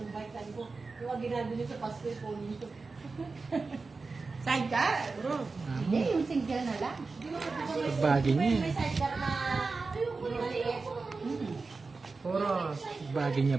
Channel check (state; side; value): quieter; left; 4.1 dB